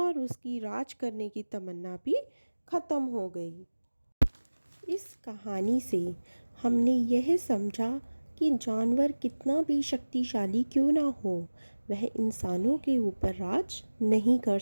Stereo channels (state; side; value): inverted; both; correlation -1.00